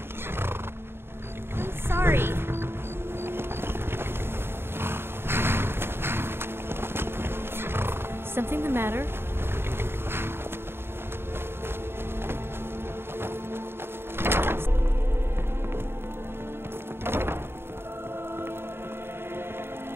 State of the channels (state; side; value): late; left; 0.11 ms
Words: I'm sorry. Something the matter?